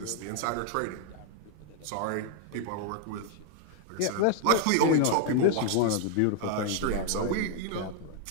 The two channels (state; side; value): different; both; correlation 0.00